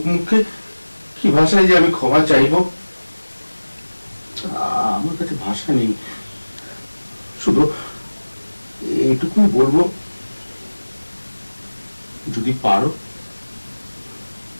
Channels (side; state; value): both; inverted; correlation -1.00